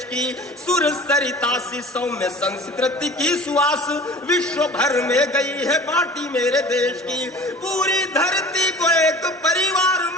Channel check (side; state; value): both; normal; correlation 0.41